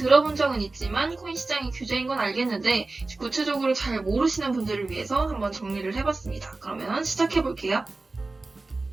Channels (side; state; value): left; quieter; 3.4 dB